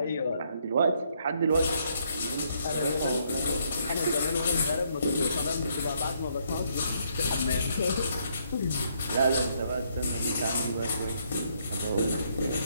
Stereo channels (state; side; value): inverted; both; correlation -0.71